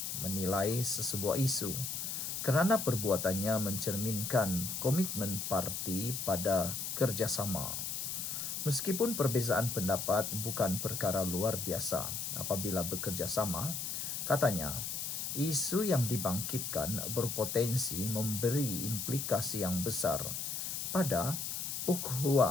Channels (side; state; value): left; noise; hiss, 3 dB below the sound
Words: menilai sesebuah isu kerana perbuatannya mencerminkan komitmen parti pada kerjasama. Meskipun perbezaan pendapat bukan perkara luar biasa apabila bekerjasama, katanya, isu yang dibangkitkan berpotensi memberi implikasi yang besar pada